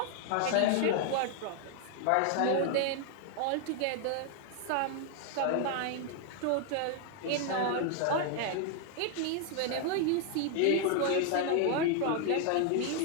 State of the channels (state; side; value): different; both; correlation 0.00